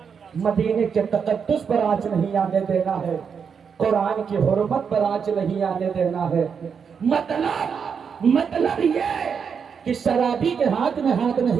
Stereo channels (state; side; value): quieter; left; 6.5 dB